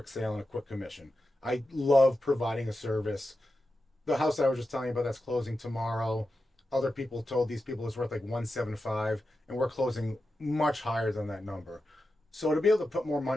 sale and a quick commission. I love providing a service. The house I was just telling you about that's closing tomorrow, other people told these people it's worth like 175, and we're closing much higher than that number. So to be able to put more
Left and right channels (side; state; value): both; normal; correlation 0.90